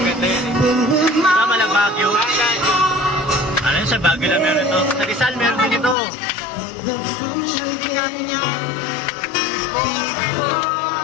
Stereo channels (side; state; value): right; drops out; at 6.0 s